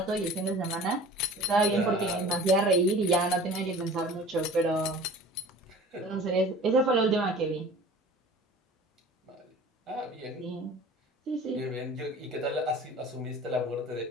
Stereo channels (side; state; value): both; normal; correlation 0.42